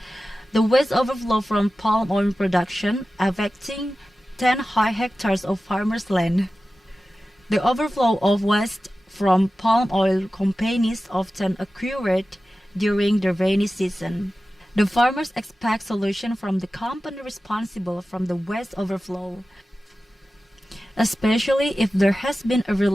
The waste overflow from palm oil production affecting 10 hectares of farmers' land. The overflow of waste from palm oil companies often occurred during the rainy season. The farmers expect solution from the company responsible from the waste overflow, especially if there has been a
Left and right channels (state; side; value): normal; both; correlation 0.95